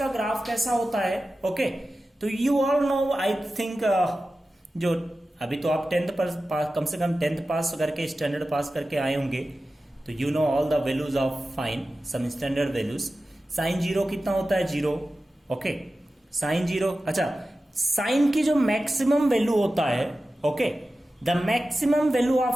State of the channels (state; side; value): normal; both; correlation 0.94